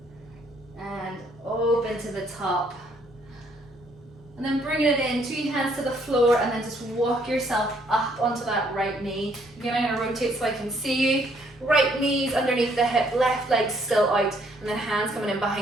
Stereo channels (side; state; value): both; normal; correlation 0.67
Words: and open to the top. And then bringing it in, 2 hands to the floor, and then just walk yourself up onto that right knee. Again, I'm going to rotate so I can see you. Right knees underneath the hip, left leg still out, and then hands coming in